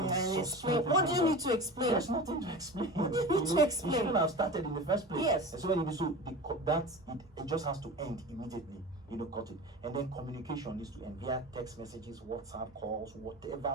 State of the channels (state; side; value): normal; both; correlation 0.32